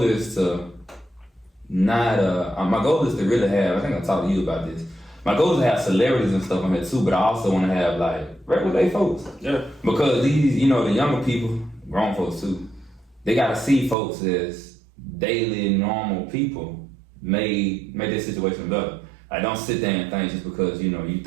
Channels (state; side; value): drops out; left; at 14.0 s